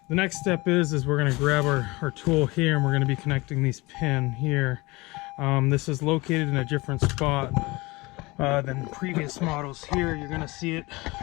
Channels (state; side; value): quieter; right; 23.0 dB